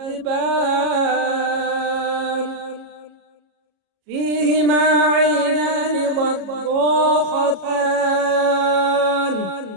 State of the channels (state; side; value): late; left; 37 ms